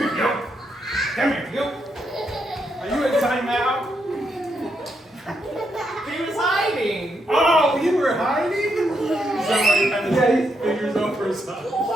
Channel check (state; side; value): normal; both; correlation 0.79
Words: you. Come here, you. Are you in timeout? He was hiding. Oh, you were hiding? Somebody had his fingers over his eyes.